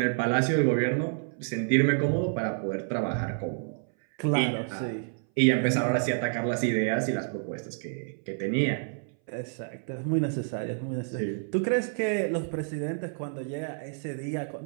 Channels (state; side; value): silent; left; 59 dB below the other